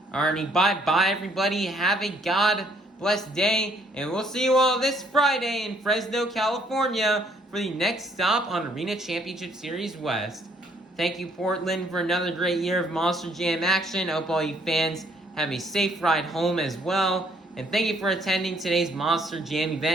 Alrighty, bye-bye everybody. Have a God-blessed day, and we'll see you all this Friday in Fresno, California for the next stop on Arena Championship Series West. Thank you, Portland, for another great year of Monster Jam action. I hope all you fans have a safe ride home as well. And thank you for attending today's Monster Jam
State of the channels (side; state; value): both; normal; correlation 0.66